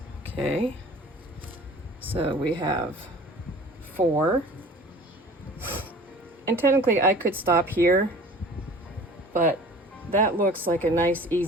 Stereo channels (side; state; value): both; normal; correlation 0.44